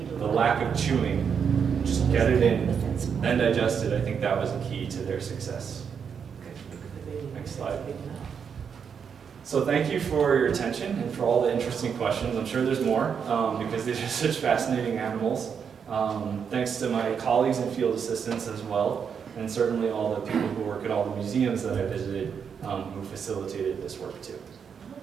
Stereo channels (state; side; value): quieter; left; 6.9 dB